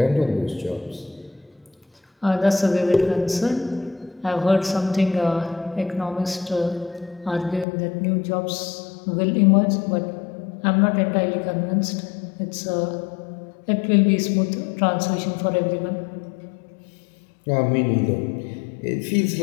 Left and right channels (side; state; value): right; drops out; at 7.7 s